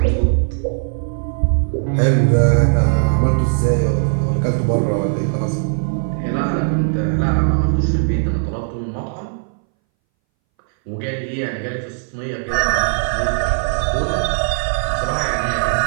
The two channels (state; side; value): silent; left; 63 dB below the other